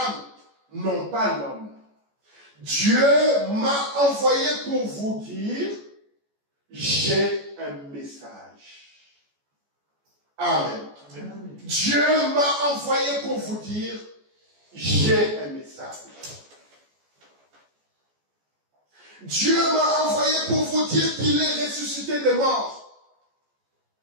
non pas l'homme. Dieu m'a envoyé pour vous dire, j'ai un message. Amen. Dieu m'a envoyé pour vous dire, j'ai un message. Dieu m'a envoyé pour vous dire qu'il est ressuscité des morts,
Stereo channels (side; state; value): left; late; 14 ms